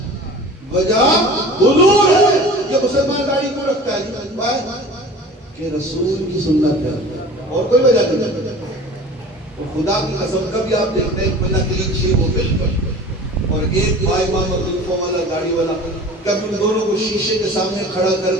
وجہ حضور ہے۔ یہ مسلمان داڑھی کو رکھتا ہے کہ رسول کی سنت ہے، اور کوئی وجہ نہیں ہے۔ تو خدا کی قسم کبھی آپ دیکھتے ہیں بنا کلیچی وہ بالکل، اور ایک بھائی امام عبدالفوں والا گاڑی والا، کبھی ان دونوں کو شیشے کے سامنے کھڑا کر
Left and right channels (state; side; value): normal; both; correlation 0.41